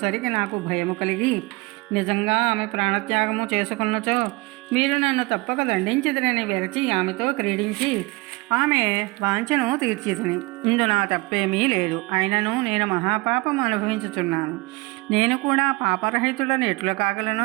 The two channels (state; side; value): quieter; left; 24.6 dB